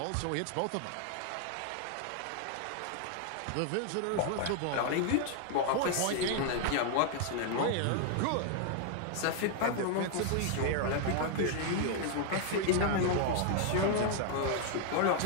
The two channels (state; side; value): different; both; correlation 0.00